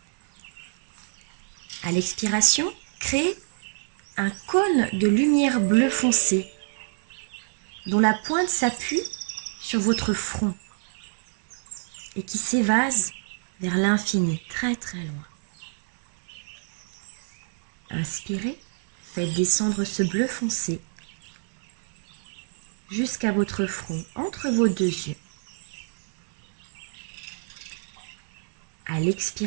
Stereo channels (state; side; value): silent; left; digital silence